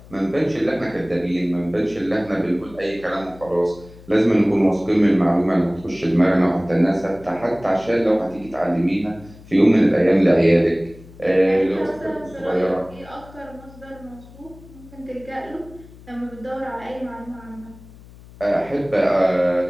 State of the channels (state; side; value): noise; left; hum, 21 dB below the sound